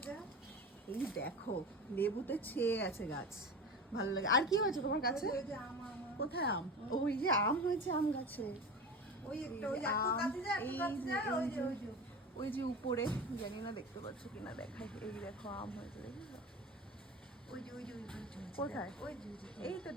এই দেখো, লেবুতে ছেয়ে আছে গাছ, ভালো লাগে। আর কি হয়েছে তোমার গাছে? কোথায় আম? ওই যে আম হয়েছে আম গাছে, ওই যে উপরে, জানি না দেখতে পাচ্ছ কিনা, দেখাই। এই দেখো আম হয়েছে, দেখেছো? কোথায়? এই তো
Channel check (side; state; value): both; normal; correlation 0.30